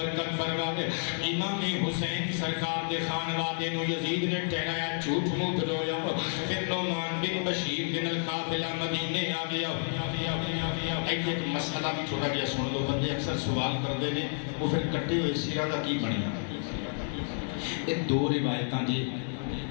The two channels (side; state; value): right; silent; digital silence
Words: فرمائے امام حسین سرکار دے خانوادے نو یزید نے ٹھہرایا جھوٹ موٹ رویا پھر نعمان بن بشیر بن القافلہ مدینے آ گیا ایک مسئلہ بھی چھوٹا گیا سن لو بندے اکثر سوال کر دے نے وہ پھر کٹے ہوئے سیرہ دا کی بنیا ایک دو روایتاں جی